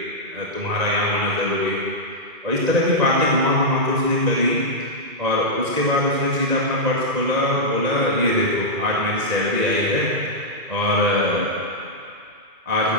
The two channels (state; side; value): late; left; 2.4 ms